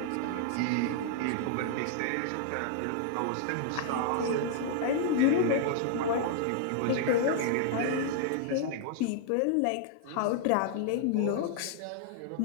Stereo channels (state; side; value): different; both; correlation -0.01